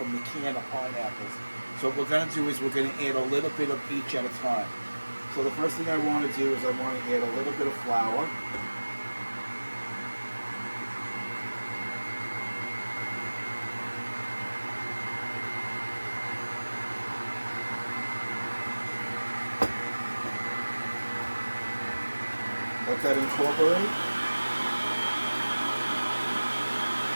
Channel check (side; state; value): both; inverted; correlation -1.00